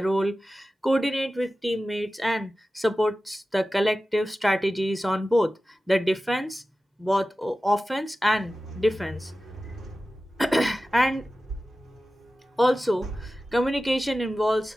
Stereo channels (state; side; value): normal; both; correlation 0.95